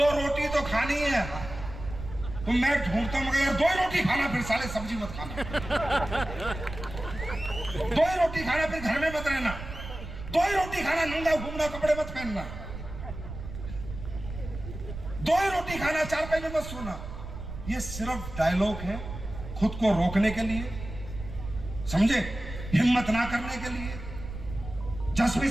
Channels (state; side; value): noise; right; rumble, 10 dB below the sound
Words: रोटी तो खानी है, तो मैं ढूंढता हूँ यार 2 रोटी खाना, फिर साले सब्जी मत खाना, 2 रोटी खाना, फिर घर में मत रहना, 2 रोटी खाना, नंगा घूमना, कपड़े मत पहनना, 2 रोटी खाना, 4 पैसे मत सोना। ये सिर्फ डायलॉग है खुद को रोकने के लिए, समझे, हिम्मत ना करने के लिए, जज्बे